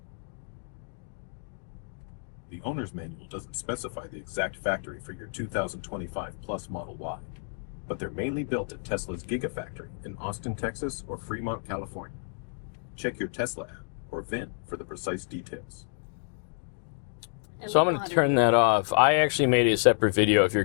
The owner's manual doesn't specify the exact factory for your 2025 Plus Model Y, but they're mainly built at Tesla's Gigafactory in Austin, Texas or Fremont, California. Check your Tesla app or VIN for the precise details. And So we I'm know how going to to turn do that off. I actually made a separate video if you're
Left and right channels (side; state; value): right; silent; 58 dB below the other